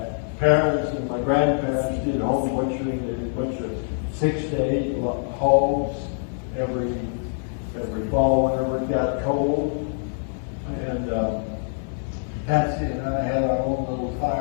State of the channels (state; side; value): silent; right; 62 dB below the other